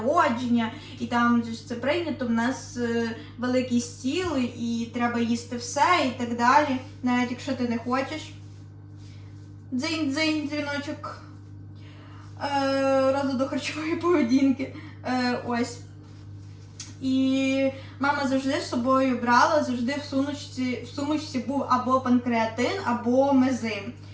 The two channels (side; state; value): both; identical; correlation 1.00